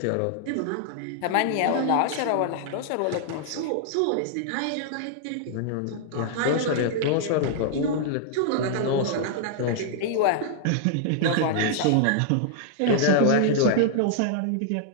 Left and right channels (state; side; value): different; both; correlation -0.01